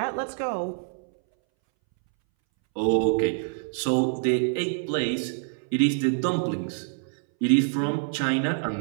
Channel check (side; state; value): left; silent; 61 dB below the other